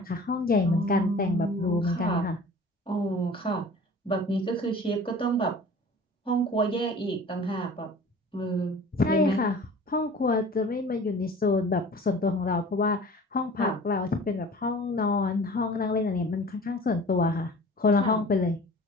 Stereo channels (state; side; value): normal; both; correlation 0.44